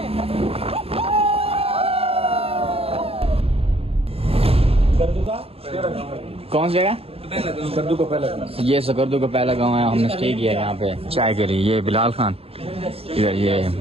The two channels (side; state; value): left; late; 0.28 ms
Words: कौन सी जगह? सकरदू का पहला गाँव। ये सकरदू का पहला गांव है, हमने स्टे किया है यहाँ पे चाय के लिए। ये बिलाल खान, इधर ये